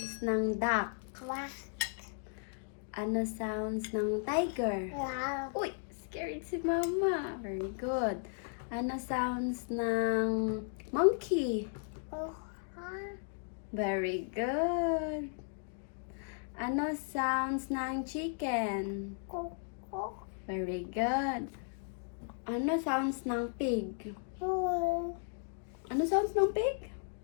ng duck? quack, Ano sounds ng tiger? wow, Uy, scared si mama. Very good. Ano sounds ng monkey? Very good. Ano sounds ng chicken? cook, cook, Very good. Ano sounds ng pig? Ano sounds ng pig?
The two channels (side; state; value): right; silent; 54 dB below the other